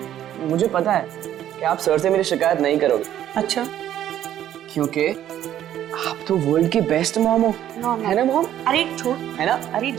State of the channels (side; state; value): left; quieter; 11.5 dB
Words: मुझे पता है कि आप सर से मेरी शिकायत नहीं करोगे। अच्छा? क्योंकि आप तो वर्ल्ड की बेस्ट मॉम हो, है ना मॉम? अरे छोड़, है ना? अरे